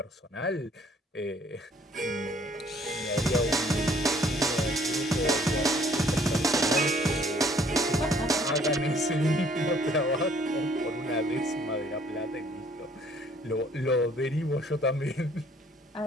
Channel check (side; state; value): both; normal; correlation 0.60